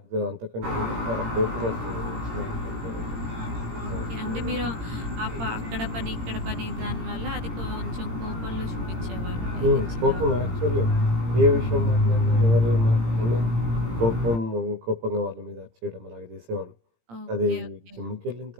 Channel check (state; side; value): late; left; 17 ms